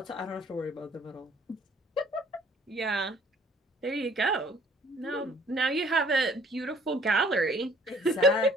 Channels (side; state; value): both; normal; correlation 0.57